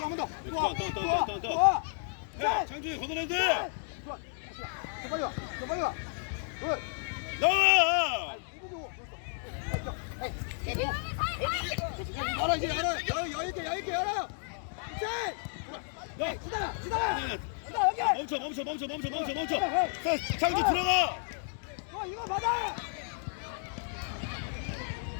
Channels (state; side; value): silent; right; 56 dB below the other